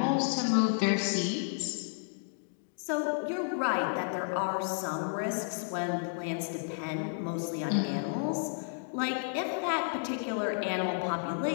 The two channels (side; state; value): right; silent; digital silence